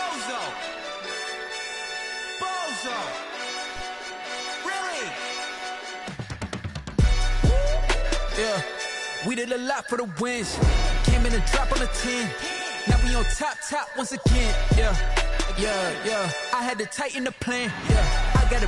Bozo. Bozo. Really? Yeah, we did a lot for the wins. Came in and dropped on the 10. Now we on top once again. Yeah. I had to tighten the plan. Yeah, I got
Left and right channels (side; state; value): both; identical; correlation 1.00